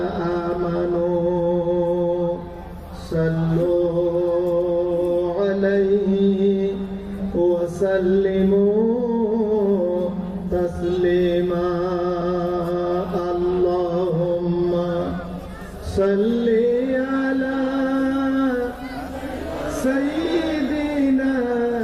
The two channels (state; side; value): identical; both; correlation 1.00